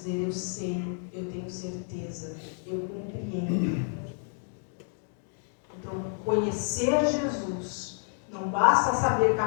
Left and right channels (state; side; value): silent; right; 58 dB below the other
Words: eu sei, eu tenho certeza, eu compreendo. Então, conhecer Jesus, não basta saber